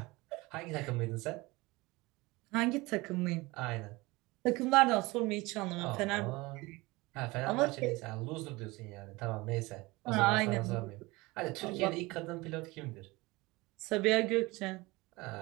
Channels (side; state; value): left; quieter; 22.5 dB